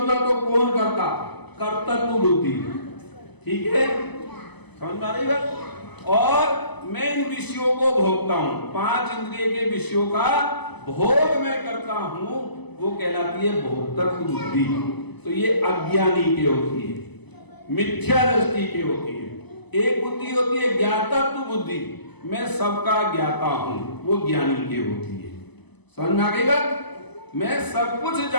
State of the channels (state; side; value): late; right; 0.99 ms